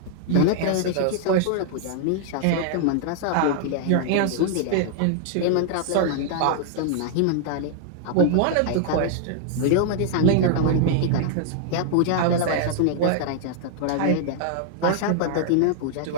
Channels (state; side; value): different; both; correlation 0.00